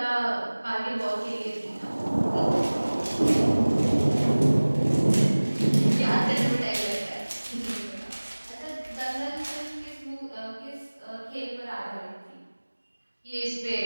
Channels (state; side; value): inverted; both; correlation -1.00